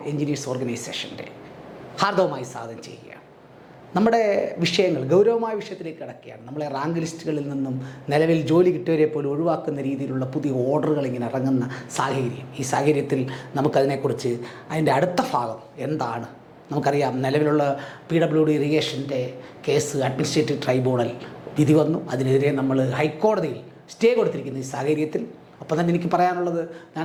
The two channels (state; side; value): identical; both; correlation 1.00